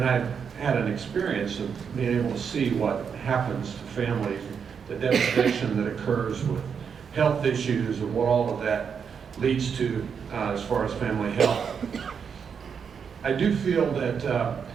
I had an experience of being able to see what happens to families, the devastation that occurs with health issues and what all of that leads to as far as family health. I do feel that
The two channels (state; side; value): quieter; left; 6.7 dB